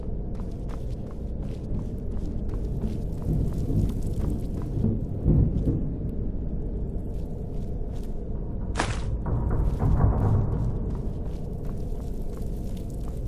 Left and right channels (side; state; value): both; identical; correlation 1.00